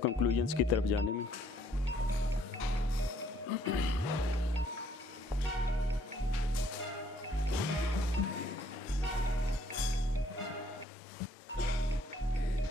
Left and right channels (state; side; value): normal; both; correlation 0.65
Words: कंक्लूजन्स की तरफ जाने में।